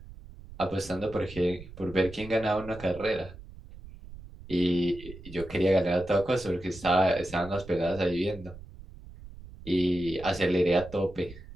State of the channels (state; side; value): noise; right; rumble, 16 dB below the sound